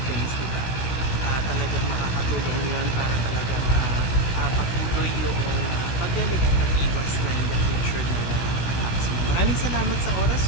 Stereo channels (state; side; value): late; right; 17 ms